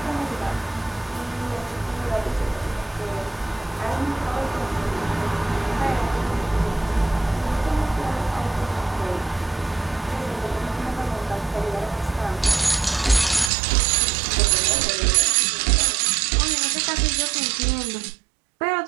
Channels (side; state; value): left; drops out; at 13.5 s